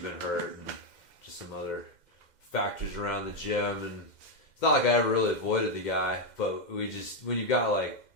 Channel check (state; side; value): late; right; 2.1 ms